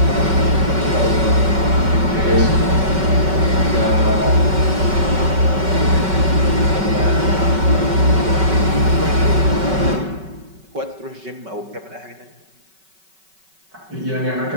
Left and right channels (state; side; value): late; left; 5.3 ms